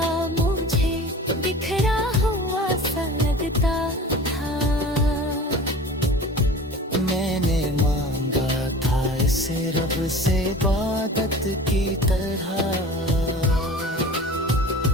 मुझे बिखरा हुआ सा लगता था। मैंने मांगा था इसे रब से इबादत की तरह,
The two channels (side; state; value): both; normal; correlation 0.39